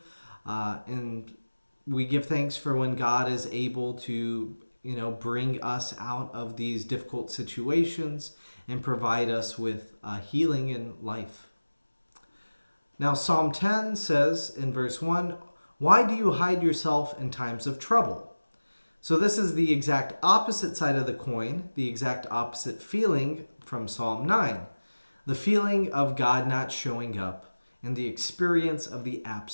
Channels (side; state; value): both; inverted; correlation -1.00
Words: And we give thanks for when God is able to, bring us out of these difficult situations and provide us with healing in life. Now, Psalm 10 says in verse 1, "Why do you hide yourself in times of trouble?" So this is the exact opposite side of the coin, the exact opposite feeling from Psalm 9. The feeling of God not showing up and the experience of the